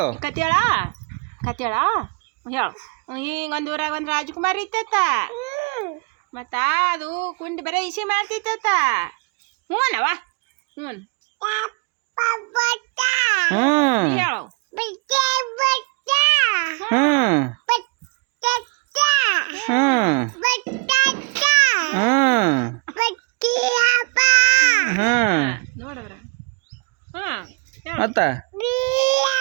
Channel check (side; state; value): left; quieter; 32.3 dB